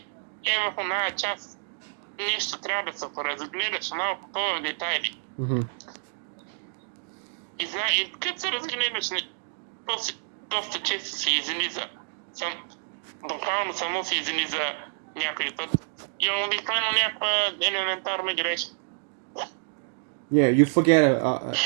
в оная част нещо трябва да се поразгледаш малко по детайли. И като се разгледаш, доста често се излиза. Буквално само се излиза някой път. И обикновено някаква елементарна грешка. Yeah, you forget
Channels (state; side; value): silent; left; digital silence